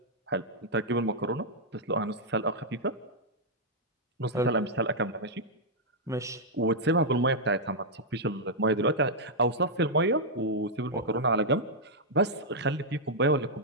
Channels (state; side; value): normal; both; correlation -0.06